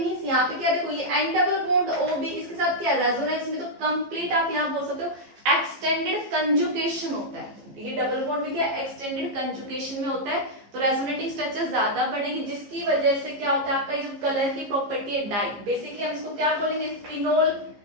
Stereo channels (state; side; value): late; left; 15 ms